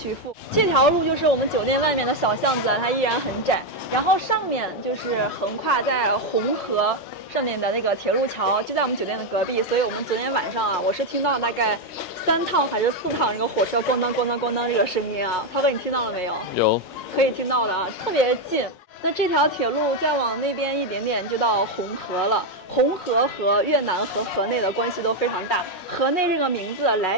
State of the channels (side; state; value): right; late; 5.5 ms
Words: 付。这条路就是我们酒店外面的小巷子，它依然很窄，然后上面就是横跨在红河上面的那个铁路桥，就在我们酒店的隔壁。所以我们昨天晚上啊，我是听到大概3趟还是4趟这个火车咣当咣当咣当这个声音啊。涛哥，你听到了没有？有，可以听到的啊，特别近。那这条铁路再往那边一点点就到红河了。红河和越南和河内的关系都非常大。河内这个名字来